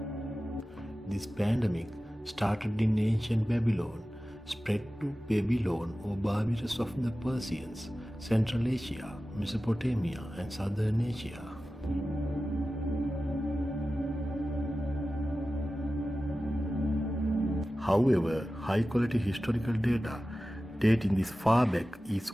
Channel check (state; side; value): normal; both; correlation 0.95